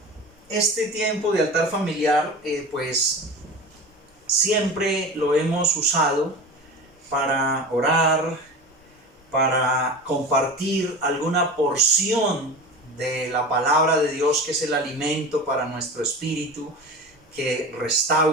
este tiempo de altar familiar pues siempre lo hemos usado para orar, para compartir alguna porción de la palabra de Dios, que es el alimento para nuestro espíritu, que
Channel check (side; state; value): both; normal; correlation 0.32